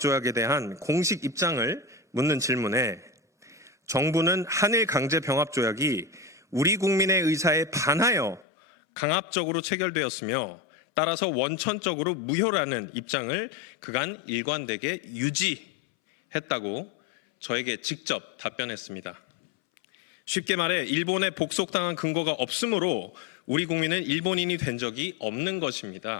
대한 공식 입장을 묻는 질문에 정부는 한일 강제병합조약이 우리 국민의 의사에 반하여 강압적으로 체결되었으며 따라서 원천적으로 무효라는 입장을 그간 일관되게 유지했다고 저에게 직접 답변했습니다. 쉽게 말해 일본에 복속당한 근거가 없으므로 우리 국민은 일본인이 된 적이 없는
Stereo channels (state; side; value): drops out; right; at 8.5 s